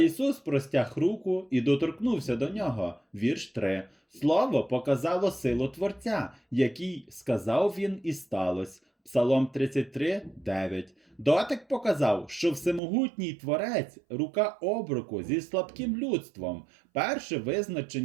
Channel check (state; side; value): drops out; left; at 12.8 s